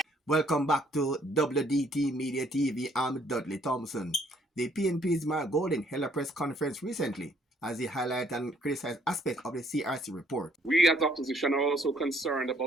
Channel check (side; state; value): both; normal; correlation 0.65